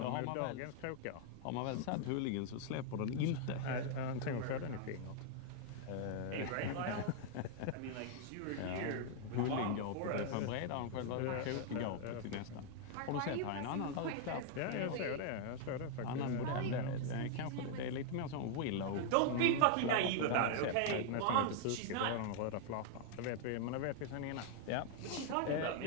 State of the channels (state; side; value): different; both; correlation 0.00